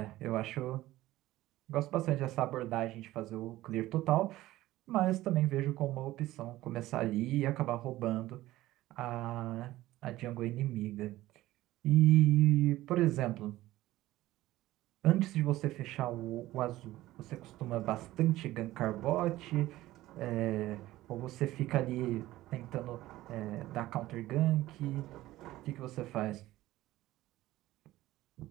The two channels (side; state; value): left; quieter; 16.3 dB